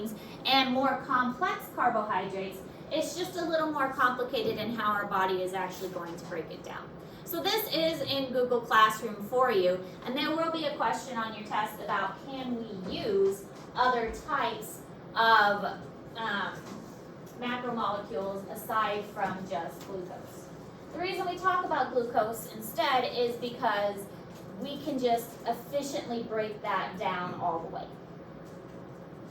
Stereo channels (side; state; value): both; identical; correlation 1.00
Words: and more complex carbohydrates, it's just a little more complicated in how our body is actually going to break it down. So this is in Google Classroom for you, and there will be a question on your test about can we use other types of macromolecules aside from just glucose. The reason we talk about glucose instead is because we can just efficiently break that down all the way.